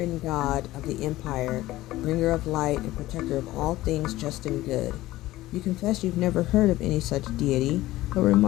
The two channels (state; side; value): quieter; right; 16.6 dB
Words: god of the Empire, bringer of light and protector of all things just and good. You confess you've never heard of any such deity, but